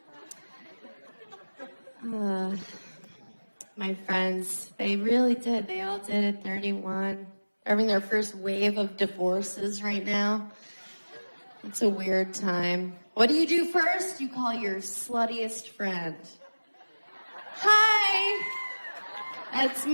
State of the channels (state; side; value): inverted; both; correlation -1.00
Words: My friends, they really did. They all did at 31. They're having their first wave of divorces right now. It's a weird time. What do you do first? You call your sluttiest friend. Hi! That's